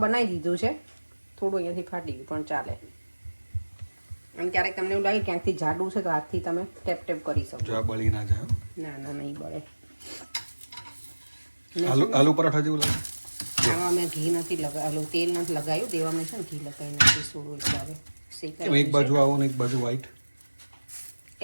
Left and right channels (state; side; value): inverted; both; correlation -1.00